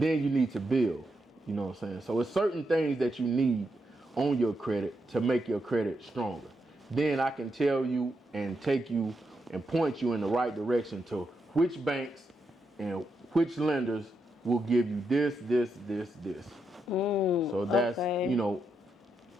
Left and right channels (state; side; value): normal; both; correlation 0.83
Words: you need to build, you know what I'm saying? So it's certain things that you need on your credit to make your credit stronger. Then I can tell you and take you and point you in the right direction to which banks and which lenders will give you this. So that's, okay.